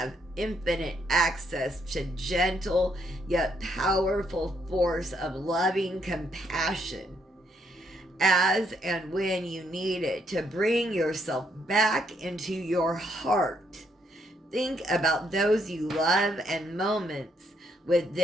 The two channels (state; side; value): normal; both; correlation 0.73